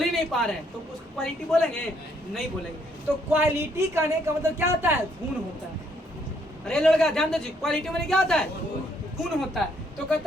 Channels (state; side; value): normal; both; correlation 0.70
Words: ही नहीं पा रहे हैं, तो उसको क्वालिटी बोलेंगे, नहीं बोलेंगे। तो क्वालिटी कहने का मतलब क्या होता है, गुण होता है। अरे लड़का ध्यान दो जी, क्वालिटी में क्या होता है, गुण होता है। तो